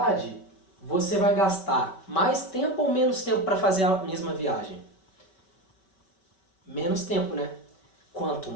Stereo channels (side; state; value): right; late; 5.2 ms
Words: você vai gastar mais tempo ou menos tempo para fazer a mesma viagem? Menos tempo, né? Quanto